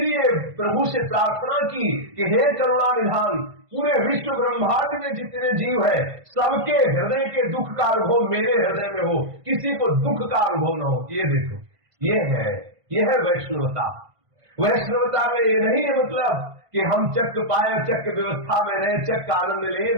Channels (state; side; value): late; left; 1.5 ms